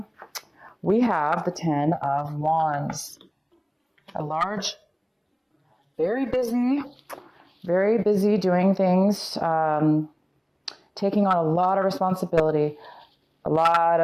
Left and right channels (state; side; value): identical; both; correlation 1.00